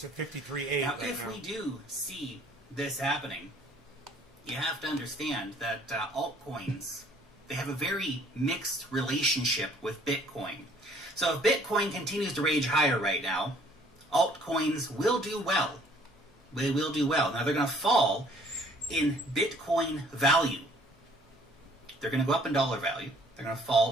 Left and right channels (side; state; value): both; normal; correlation 0.59